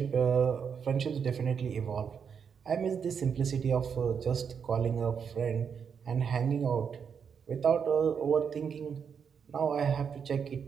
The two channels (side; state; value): left; quieter; 6.9 dB